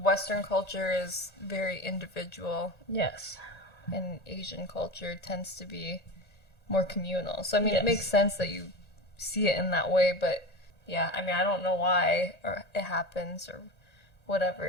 Western culture is very individual. Yes. And Asian culture tends to be more communal. So, I mean, it makes sense that you see it in that way, but yeah, I mean, I don't know why or it happens or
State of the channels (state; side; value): late; right; 1.8 ms